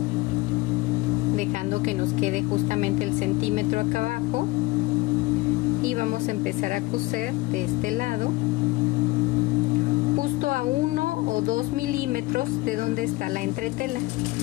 dejando que nos quede justamente el centímetro acá abajo, y vamos a empezar a coser de este lado justo a 1 o 2 milímetros de donde está la entretela.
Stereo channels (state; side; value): quieter; right; 21.0 dB